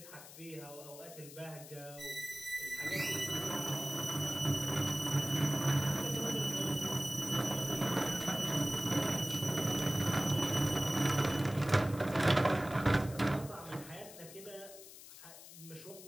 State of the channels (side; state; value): left; noise; hiss, 16 dB below the sound